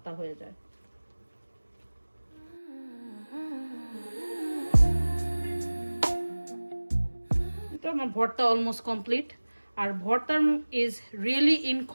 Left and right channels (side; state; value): both; inverted; correlation -1.00